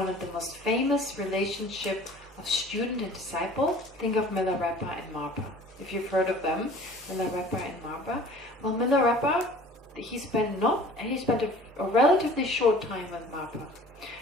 of the most famous relationship of student and disciple, think of Milarepa and Marpa. If you've heard of them, Milarepa and Marpa. Well, Milarepa, he spent a relatively short time with Marpa.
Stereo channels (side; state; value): both; normal; correlation 0.47